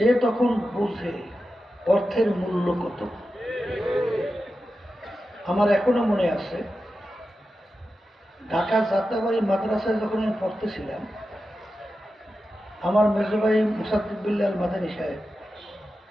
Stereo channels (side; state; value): both; normal; correlation 0.91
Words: তখন বুঝে অর্থের মূল্য কত। আমার এখনো মনে আছে, ঢাকা যাত্রাবাড়ি মাদ্রাসায় যখন আমি পড়তেছিলাম, আমার মেজো ভাই মুসাদ্দিক বিল্লাহ মাদানী সাহেব,